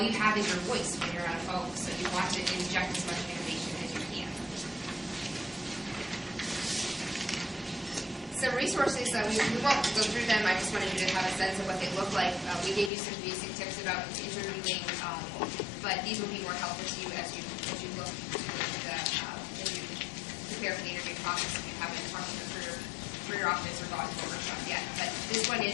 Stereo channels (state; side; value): drops out; right; at 12.9 s